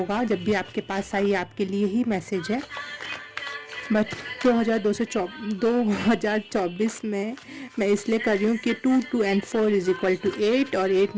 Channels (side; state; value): both; identical; correlation 1.00